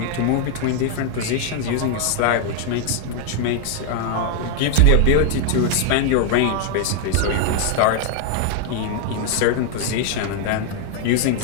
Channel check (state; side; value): different; both; correlation 0.00